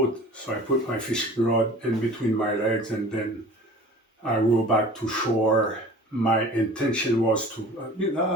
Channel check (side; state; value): both; normal; correlation 0.43